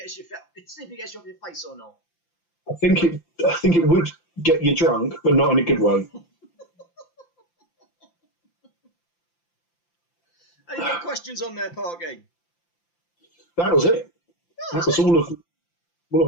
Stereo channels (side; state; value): right; late; 5.8 ms